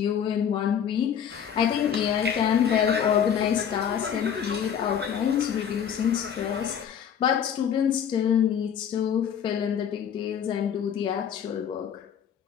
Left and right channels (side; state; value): right; quieter; 8.4 dB